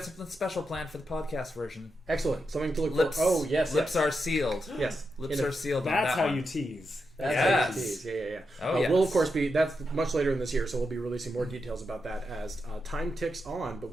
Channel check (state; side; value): normal; both; correlation 0.86